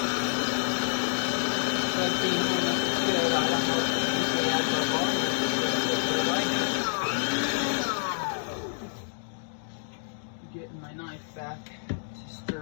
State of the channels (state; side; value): silent; right; digital silence